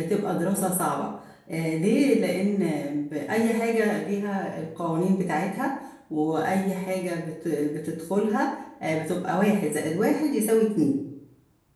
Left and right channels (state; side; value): identical; both; correlation 1.00